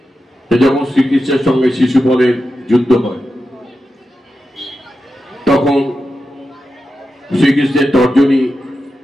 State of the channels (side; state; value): both; normal; correlation 0.90